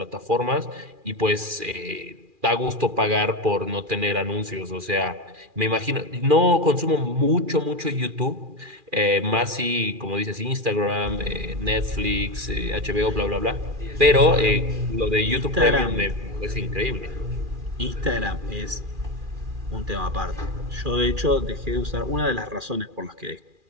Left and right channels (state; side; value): late; left; 2.4 ms